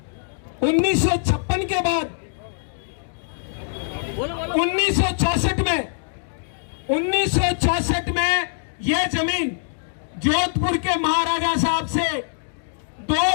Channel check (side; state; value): right; silent; digital silence